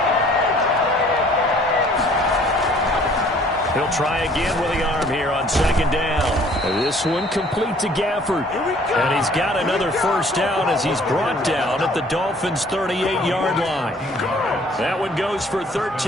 He'll try again with the arm here on 2nd down. This one complete to Gafford. And he's got another 1st down as he's brought down at the Dolphins' 38-yard line. That one goes for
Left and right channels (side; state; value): both; normal; correlation 0.56